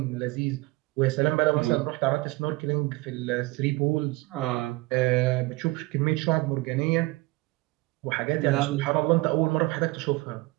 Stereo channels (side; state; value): left; quieter; 22.1 dB